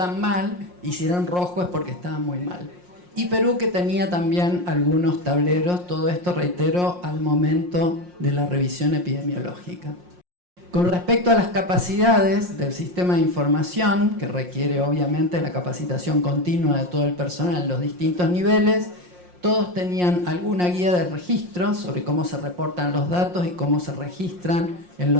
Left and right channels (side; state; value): left; late; 5.6 ms